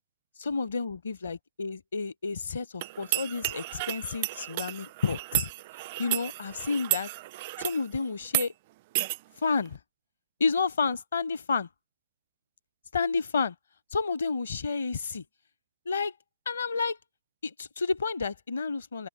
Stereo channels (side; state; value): both; inverted; correlation -0.70